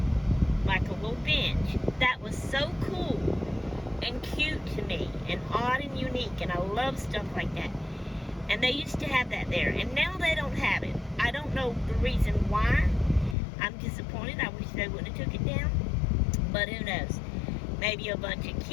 like a little bench. That was so cool and cute to me, and odd and unique, and I love stuff like that. And they used to have that there, and now they don't have it. I don't know the reason why. I'm disappointed. I wish they wouldn't have took it down, but who knows? Maybe a bunch of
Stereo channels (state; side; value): drops out; right; at 13.4 s